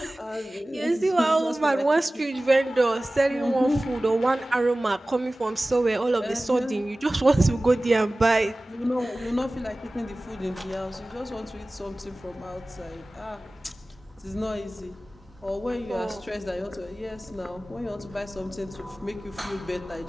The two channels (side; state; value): both; normal; correlation 0.97